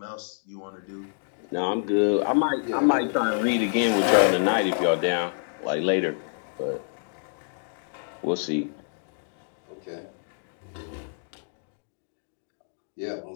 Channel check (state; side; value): silent; right; digital silence